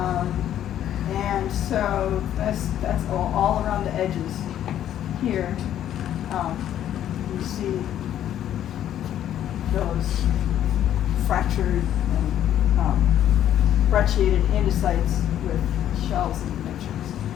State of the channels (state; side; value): quieter; right; 11.1 dB